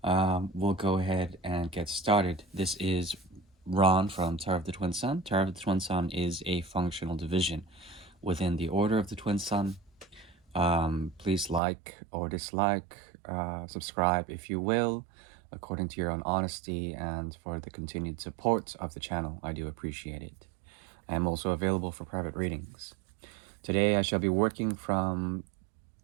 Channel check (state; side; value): drops out; left; at 11.6 s